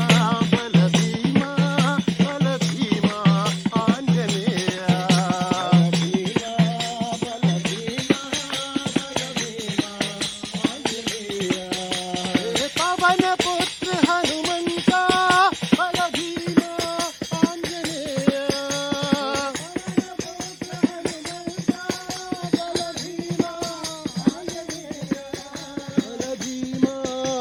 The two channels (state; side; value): identical; both; correlation 1.00